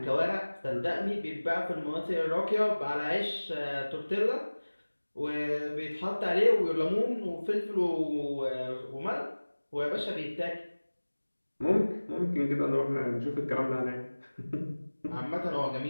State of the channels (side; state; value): both; inverted; correlation -1.00